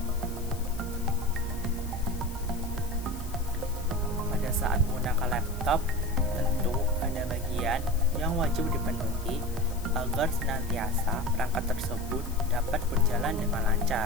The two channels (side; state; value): left; noise; hiss, 17 dB below the sound